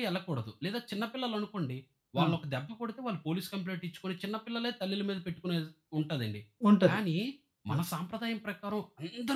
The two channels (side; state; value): both; identical; correlation 1.00